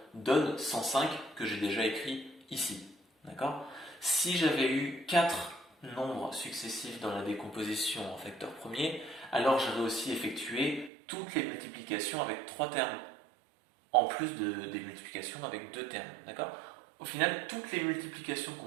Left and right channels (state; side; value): drops out; left; at 10.9 s